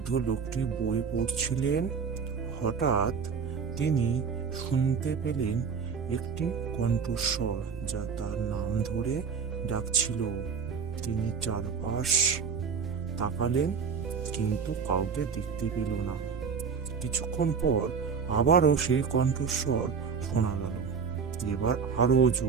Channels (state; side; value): quieter; left; 6.0 dB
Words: লোকটি বই পড়ছিলেন। হঠাৎ তিনি শুনতে পেলেন একটি কণ্ঠস্বর, যা তার নাম ধরে ডাকছিল। তিনি চারপাশ তাকালেন, কিন্তু কাউকে দেখতে পেল না। কিছুক্ষণ পর আবারও সেই কণ্ঠস্বর শোনা গেল, এবার আরো